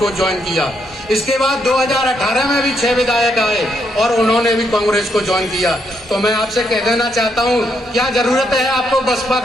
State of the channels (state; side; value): normal; both; correlation 0.77